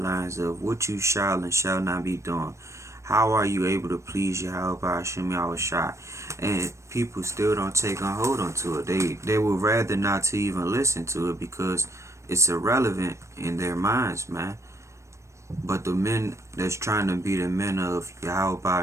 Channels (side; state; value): left; late; 0.14 ms